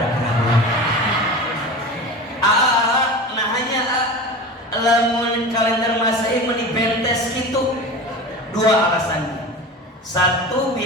keraguan. Nah hanya lamun kalender Masehi menibentes gitu, 2 alasan. Satu,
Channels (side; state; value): both; normal; correlation 0.31